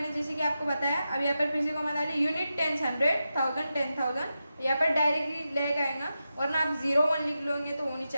जैसे कि आपको बताया। अब यहाँ पर फिर से कॉमा डाली, यूनिट 10, 100, 1000, 10,000, यहाँ पर डायरेक्टली लैग आएगा, वरना आप 0, 1 लिख लोगे तो वो नहीं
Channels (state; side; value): inverted; both; correlation -0.90